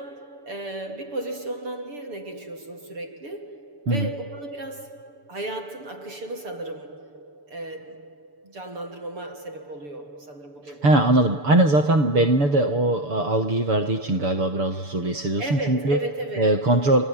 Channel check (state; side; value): late; left; 6.9 ms